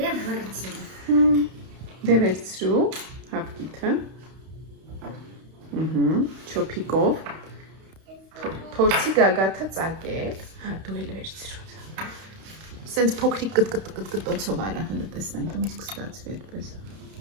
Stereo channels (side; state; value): left; late; 31 ms